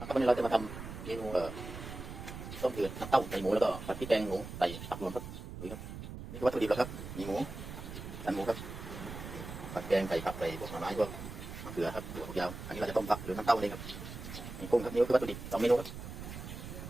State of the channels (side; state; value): right; noise; rumble, 10 dB below the sound